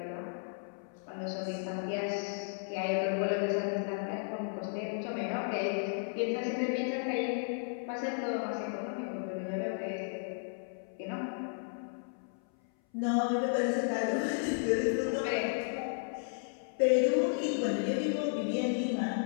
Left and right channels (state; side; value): silent; right; 55 dB below the other